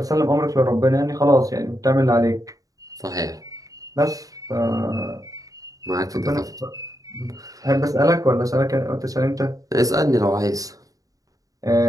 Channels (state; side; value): late; left; 0.17 ms